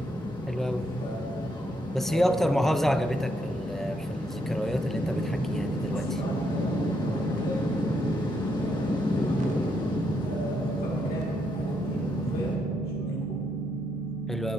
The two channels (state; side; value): normal; both; correlation 0.77